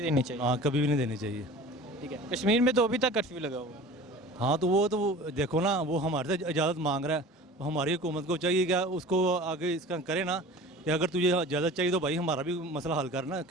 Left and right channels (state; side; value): normal; both; correlation 0.40